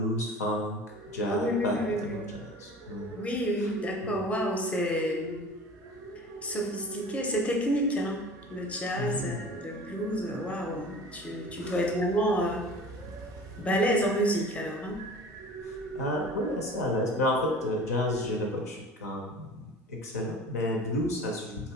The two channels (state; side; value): normal; both; correlation 0.41